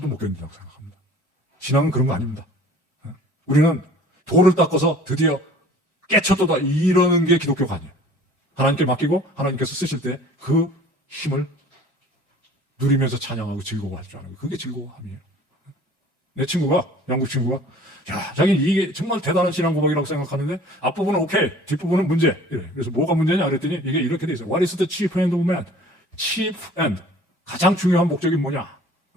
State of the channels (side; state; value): both; normal; correlation 0.48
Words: 못 견딘다고 생각합니다. 신앙은 그런 거 아닙니다. 우리는 돌을 닦아서 드디어 깨쳤도다 이러는 게 기독교가 아니에요. 하나님께 맡기고 하나님께서 쓰실 때 그 힘을 누리면서 찬양하고 즐거워할 줄 아는 거예요. 그게 즐거움이에요. 내 친구가, 영국 친구가, 야, 자기는 이게 정말 대단한 신앙 고백이라고 생각하는데 앞부분은 오케이, 뒷부분은 문제. 이래. 그래서 뭐가 문제냐 그랬더니 이게 이렇게 돼 있어요. What is the chief end of man? chief end. 가장 중요한 목적이 뭐냐?